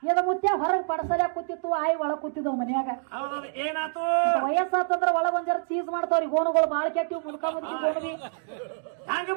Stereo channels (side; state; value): left; silent; digital silence